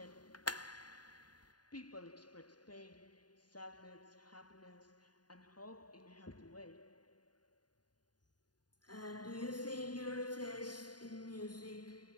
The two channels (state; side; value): late; right; 0.70 ms